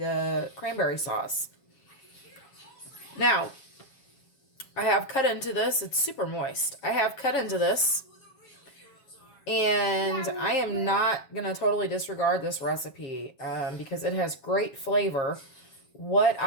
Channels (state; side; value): late; right; 7.2 ms